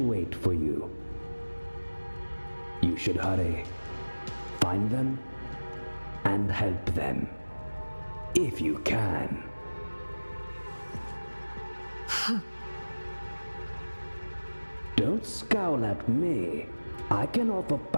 wait for you. You should hurry. Find them and help them. If you can. Don't scowl at me. I can offer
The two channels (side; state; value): both; inverted; correlation -1.00